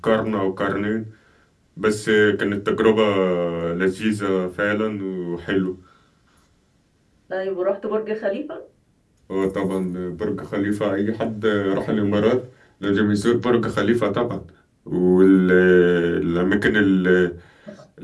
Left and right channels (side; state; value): both; identical; correlation 1.00